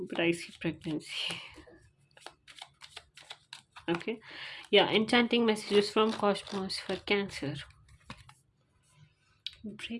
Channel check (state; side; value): identical; both; correlation 1.00